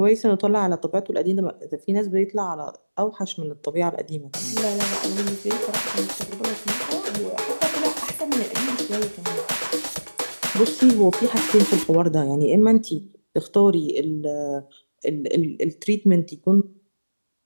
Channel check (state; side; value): inverted; both; correlation -1.00